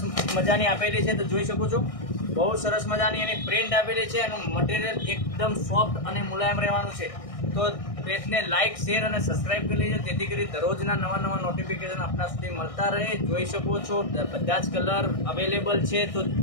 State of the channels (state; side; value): late; right; 1.6 ms